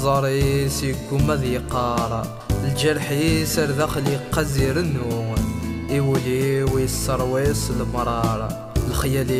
سيكم ذي قارا الجرحي سر داخلي قزير النوم يولي ويسرويس المرارة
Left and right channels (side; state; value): both; identical; correlation 1.00